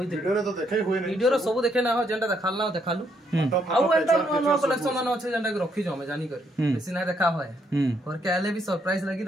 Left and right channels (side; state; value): both; normal; correlation 0.73